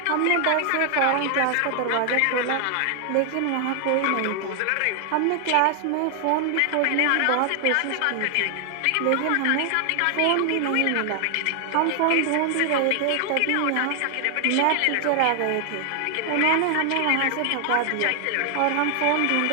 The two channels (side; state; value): both; different; correlation 0.00